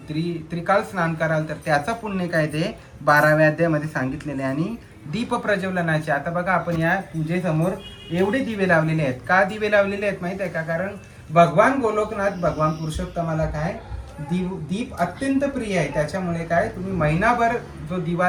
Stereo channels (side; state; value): both; identical; correlation 1.00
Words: त्रिकाल स्नान कराल तर त्याचा पुण्य काय ते 12व्या अध्यायामध्ये सांगितलेले आहे. आणि दीप प्रज्वलनाचे. आता बघा आपण या पूजेसमोर एवढे दिवे लावलेले आहेत. का दिवे लावलेले आहेत माहित आहे का? कारण भगवान गोलोकनाथ भगवान पुरुषोत्तमाला काय दीप अत्यंत प्रिय आहे. त्याच्यामुळे काय तुम्ही महिनाभर जो दिवा